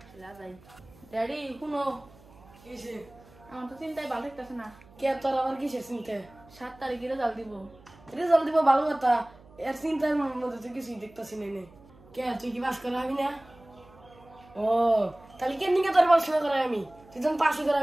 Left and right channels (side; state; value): right; noise; hum, 24 dB below the sound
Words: যাই ড্যাডি শুনো কিসে আমার তো চিন্তায় ভালো থাকতেছে না কে তোর আবার কিসে চিন্তা 7 তারিখে রেজাল্ট দিব রেজাল্ট দিব ভালো কথা এর চিন্তার মধ্যে তো কিছুই দেখতেছি না কে তুই কি পাস করাবি না ও তাহলে কেন নিকে তোর পড়াশোনা করাই আমি তুই তখন পাশই